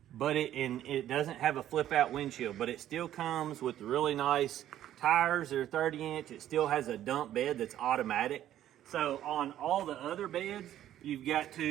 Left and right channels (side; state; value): left; quieter; 12.0 dB